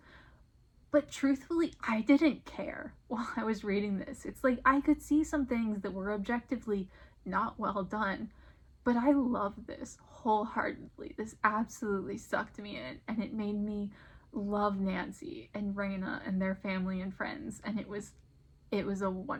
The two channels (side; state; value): both; identical; correlation 1.00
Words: but truthfully, I didn't care while I was reading this. It's like I could see some things that were objectively not well done, but I love this wholeheartedly. This absolutely sucked me in, and it made me love Nancy and Reina and their family and friends, and it was a